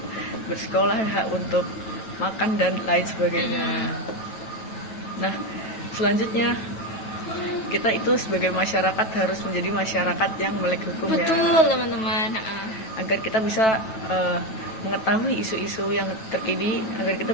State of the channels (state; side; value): late; right; 9.2 ms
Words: bersekolah, hak untuk makan dan lain sebagainya. Nah, selanjutnya kita itu sebagai masyarakat harus menjadi masyarakat yang melek hukum. Betul, ya. Teman-teman. Agar kita bisa mengetahui isu-isu yang terkini agar kita